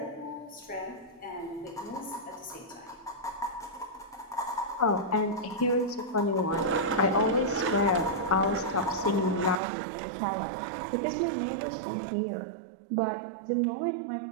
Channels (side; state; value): left; drops out; at 9.6 s